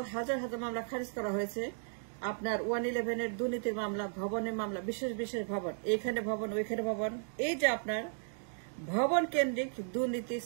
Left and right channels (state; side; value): silent; left; digital silence